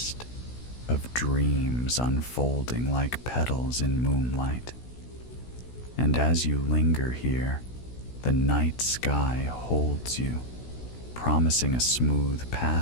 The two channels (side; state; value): right; late; 16 ms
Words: of dreams unfolding like petals in moonlight. And as you linger here, the night sky holds you, promising a smooth